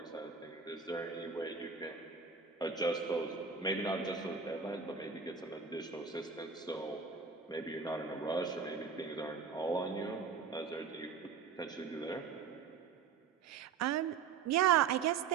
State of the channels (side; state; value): left; quieter; 5.8 dB